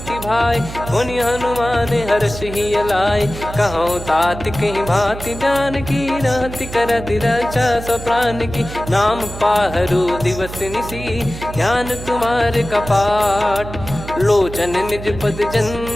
भाई, पुनि हनुमान हर्ष ही लाए। कहूँ तात कहीं भांति जानकी, रहति करति रक्षा सो प्राण की। नाम पाहरु दिवस निसी, ज्ञान तुम्हारे कपाट। लोचन निज पद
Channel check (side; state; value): right; noise; hum, 11 dB below the sound